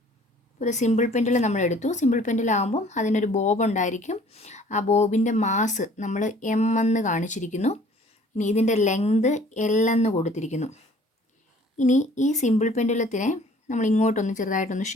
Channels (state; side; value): normal; both; correlation 0.53